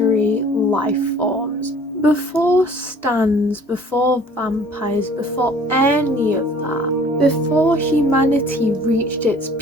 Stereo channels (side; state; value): both; normal; correlation 0.51